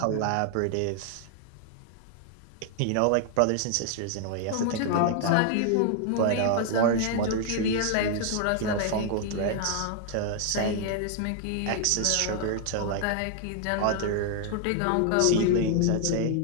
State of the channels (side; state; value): both; different; correlation 0.00